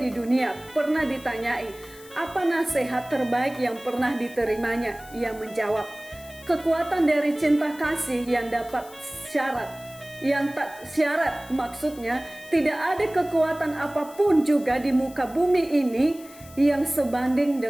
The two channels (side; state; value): left; noise; hiss, 21 dB below the sound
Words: dunia, pernah ditanyai, apa nasihat terbaik yang pernah diterimanya? Ia menjawab, kekuatan dari cinta kasih yang dapat syarat. Yang tak syarat, maksudnya tidak ada kekuatan apapun juga di muka bumi ini yang sebanding